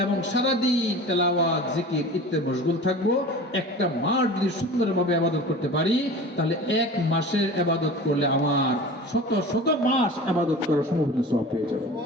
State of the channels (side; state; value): both; normal; correlation 0.37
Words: এবং সারাদিন তেলাওয়াত, জিকির ইত্যাদি মশগুল থাকবো। একটা মাস যদি সুন্দরভাবে ইবাদত করতে পারি, তাহলে 1 মাসের ইবাদত করলে আমার শত শত মাস ইবাদত করার সম্ভাবনা সওয়াব পেয়ে যাবে।